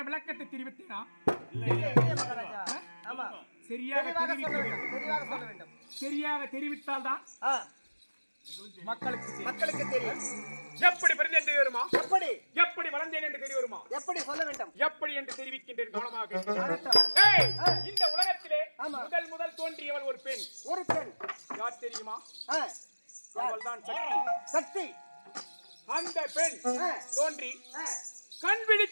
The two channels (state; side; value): inverted; both; correlation -1.00